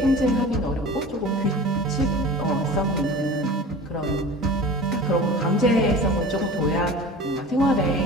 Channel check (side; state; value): both; normal; correlation 0.37